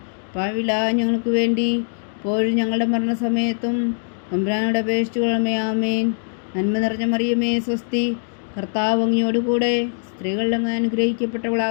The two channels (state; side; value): silent; right; digital silence